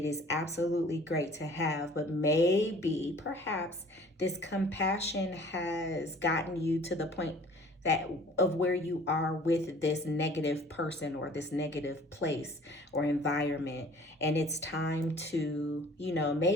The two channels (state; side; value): normal; both; correlation 0.50